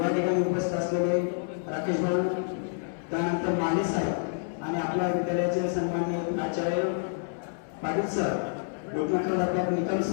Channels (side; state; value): right; silent; 59 dB below the other